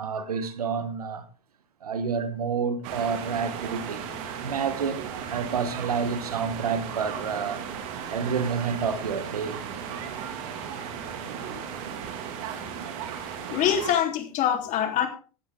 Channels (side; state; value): both; normal; correlation 0.02